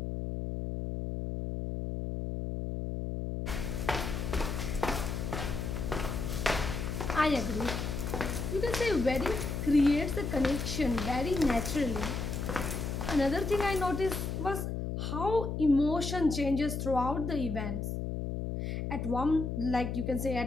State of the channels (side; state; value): left; noise; hum, 3 dB below the sound